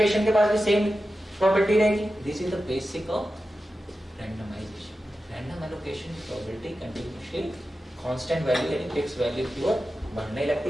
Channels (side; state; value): both; normal; correlation 0.92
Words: के पास भी सेम प्रोबेबिलिटी रहेगी। This is the basic of randomisation. Random allocation की प्रोबेबिलिटी कंटिन्यूअसली कांस्टेंट वैल्यू यानी फिक्स वैल्यू की ओर बढ़ने